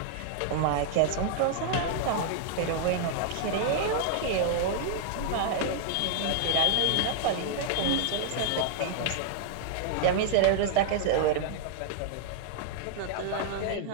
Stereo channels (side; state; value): both; different; correlation -0.01